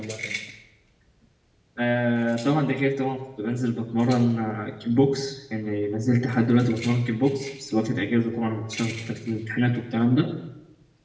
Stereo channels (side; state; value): both; identical; correlation 1.00